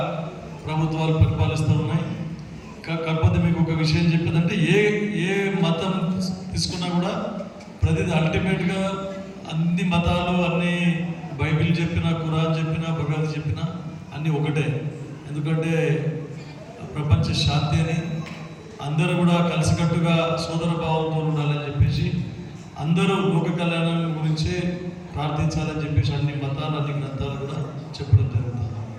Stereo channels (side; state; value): both; identical; correlation 1.00